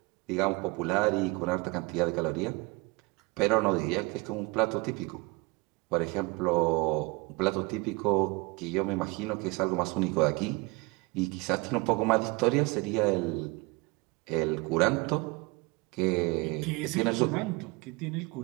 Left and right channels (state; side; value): quieter; left; 26.1 dB